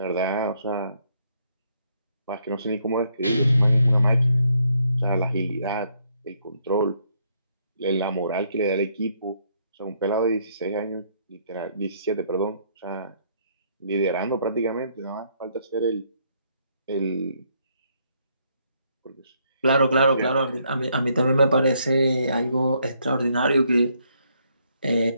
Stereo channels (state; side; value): inverted; both; correlation -0.72